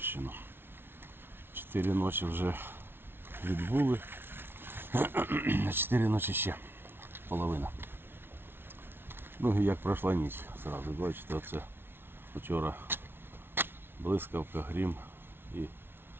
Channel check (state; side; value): late; left; 0.11 ms